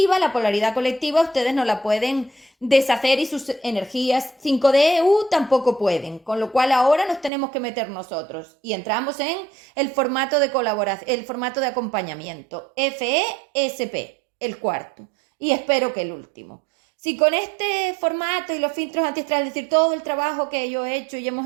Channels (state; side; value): drops out; left; at 7.3 s